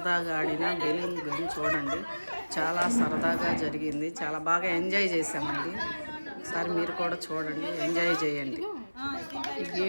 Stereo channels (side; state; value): both; inverted; correlation -1.00